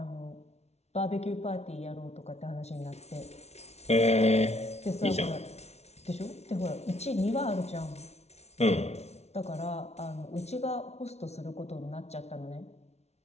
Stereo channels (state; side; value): late; right; 0.31 ms